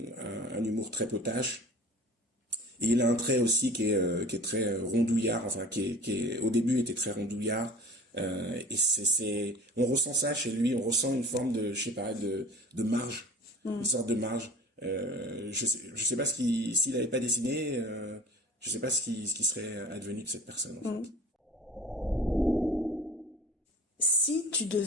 humour très potache. Et il a un trait aussi qui est très rondouillard, enfin qui au début était très rondouillard. Et on ressent ça chez lui, on ressent une forme de, je sais pas, de marge, une sorte de marge. Je sais pas s'il avait pas dessiné, je sais pas ce qui serait advenu de cette personne, en fait. Si tu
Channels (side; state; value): both; normal; correlation 0.42